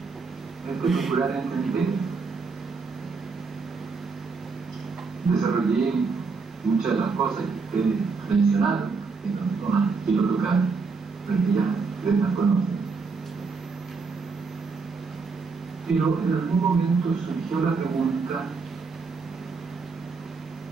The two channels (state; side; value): quieter; left; 4.7 dB